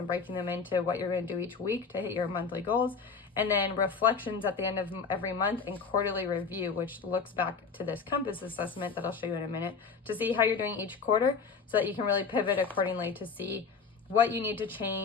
breaking them into what you're going to do each week to hit your monthly goals. And then reflections at the end of every month, and quarterly review, which looks back to this compass assessment that I'll show you in a minute to see how you're doing each quarter so that you can really pivot accordingly to see what you need to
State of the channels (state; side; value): quieter; right; 5.3 dB